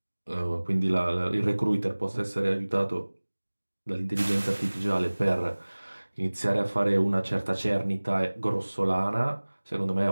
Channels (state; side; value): inverted; both; correlation -1.00